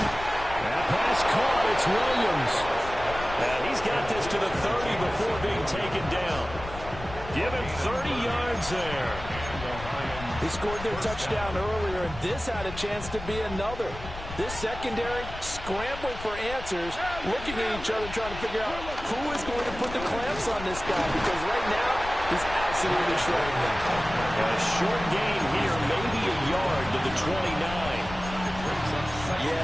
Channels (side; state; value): left; noise; rumble, 11 dB below the sound